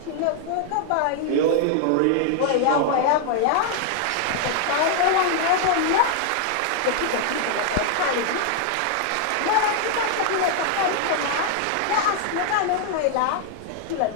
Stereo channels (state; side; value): different; both; correlation 0.00